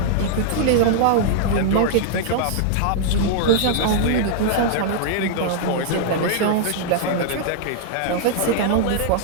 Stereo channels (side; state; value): both; different; correlation -0.01